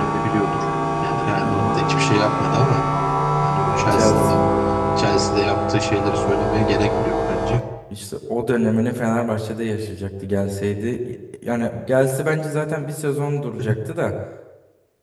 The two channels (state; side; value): identical; both; correlation 1.00